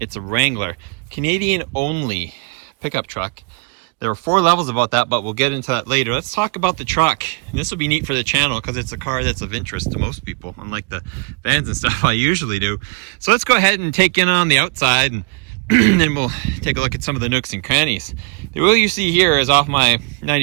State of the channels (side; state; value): left; quieter; 33.0 dB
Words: It's a Wrangler. Canadian only pickup truck. There are 4 levels about that, but we'll get into that later. Let's talk about the truck. And this will be neat for the channel because it's a car that's of interest to most people, unlike the vans and stuff I usually do. So let's go ahead and take in on the outside, and then we'll take a look at some of the nooks and crannies. The wheel you see here is off my